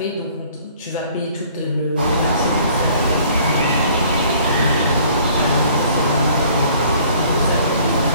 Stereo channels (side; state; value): both; inverted; correlation -0.56